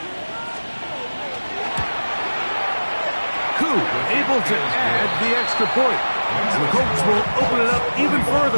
Koo able to add the extra point. And the Colts will open it up even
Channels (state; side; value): inverted; both; correlation -1.00